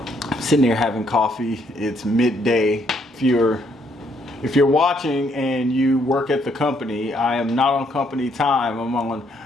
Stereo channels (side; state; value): both; normal; correlation 0.71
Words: sitting there having coffee. It's midday. If you're watching and you work at the company, I am not on company time. I'm on